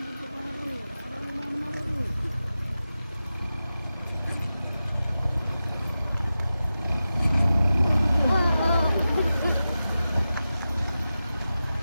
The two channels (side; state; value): both; inverted; correlation -0.93